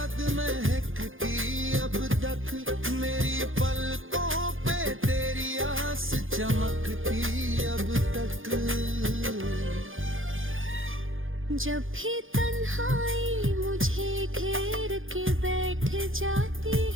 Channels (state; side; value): late; left; 0.58 ms